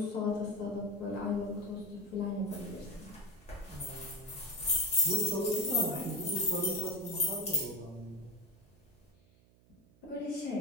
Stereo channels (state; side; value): noise; right; hum, 29 dB below the sound